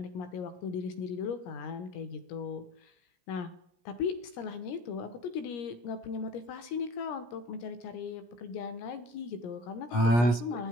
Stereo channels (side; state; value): right; late; 17 ms